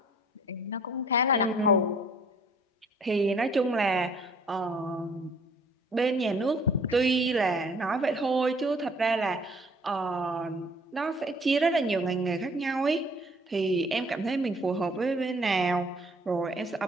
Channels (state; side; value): normal; both; correlation 0.57